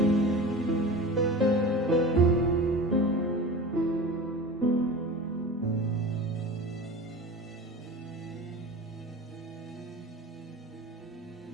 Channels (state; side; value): normal; both; correlation 0.33